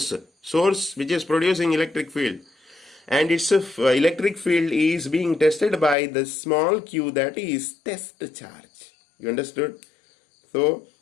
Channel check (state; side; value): drops out; right; at 6.0 s